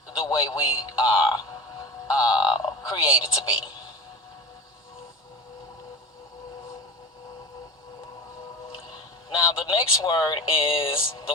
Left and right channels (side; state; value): both; normal; correlation 0.31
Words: the way we are created to be. Now the next word is the